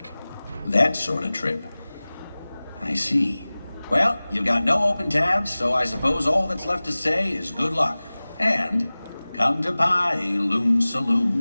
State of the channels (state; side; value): inverted; both; correlation -0.99